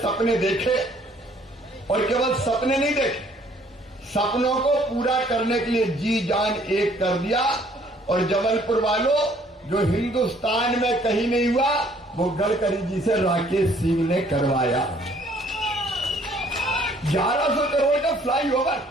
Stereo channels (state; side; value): normal; both; correlation 0.61